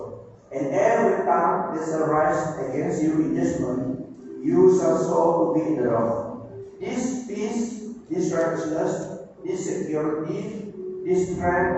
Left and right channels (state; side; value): identical; both; correlation 1.00